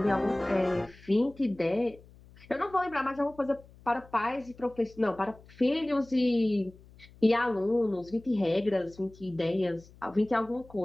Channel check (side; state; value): left; noise; hum, 24 dB below the sound